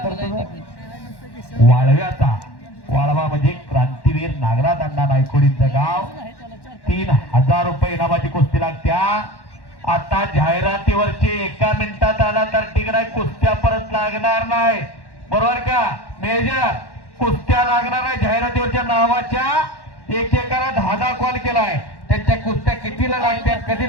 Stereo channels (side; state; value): right; late; 1.1 ms